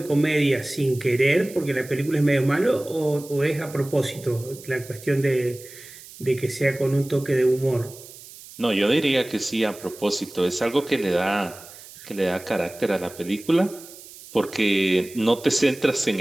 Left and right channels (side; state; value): right; noise; hiss, 18 dB below the sound